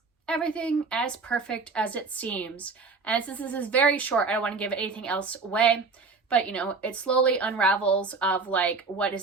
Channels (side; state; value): left; quieter; 4.3 dB